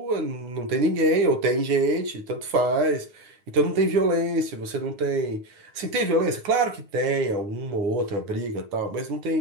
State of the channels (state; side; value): late; left; 9.5 ms